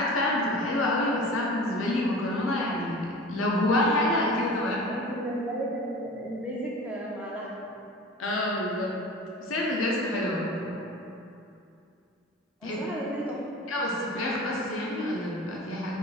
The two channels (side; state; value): both; normal; correlation 0.37